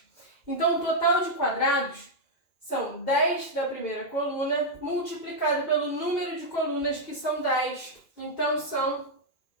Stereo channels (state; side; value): late; right; 2.4 ms